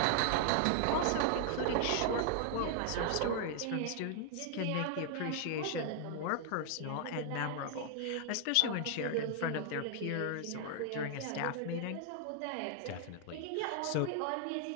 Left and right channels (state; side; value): different; both; correlation 0.00